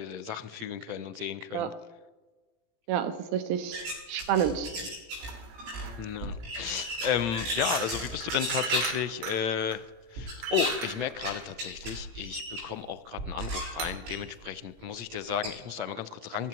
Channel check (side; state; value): left; late; 18 ms